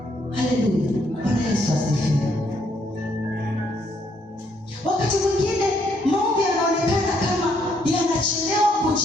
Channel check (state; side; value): normal; both; correlation 0.71